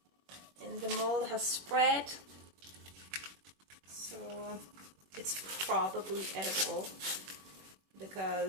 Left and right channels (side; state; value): left; late; 21 ms